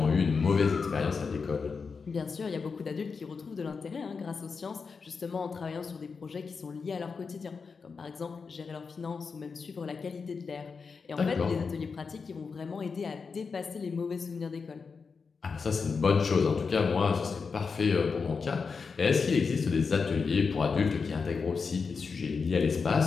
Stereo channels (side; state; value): right; quieter; 5.1 dB